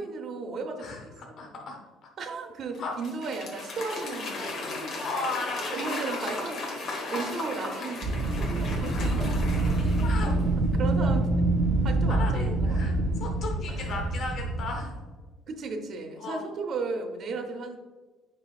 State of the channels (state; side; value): normal; both; correlation 0.65